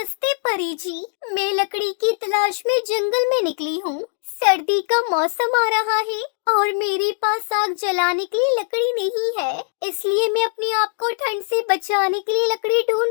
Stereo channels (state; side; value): silent; right; digital silence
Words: परी जी, मैं लकड़ी की तलाश में जंगल में निकली हूँ। सर्दी का मौसम आ रहा है और मेरे पास आग जलाने के लिए लकड़ी नहीं है, इसलिए मैं अपने आप को ठंड से बचाने के लिए लकड़ी